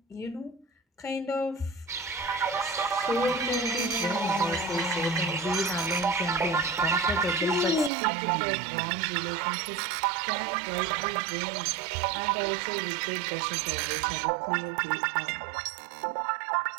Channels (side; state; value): left; drops out; at 7.9 s